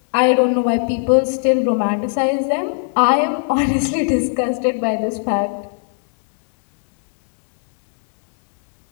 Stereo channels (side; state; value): right; silent; digital silence